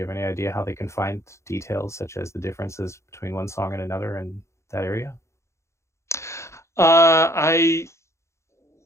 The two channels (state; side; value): late; right; 0.14 ms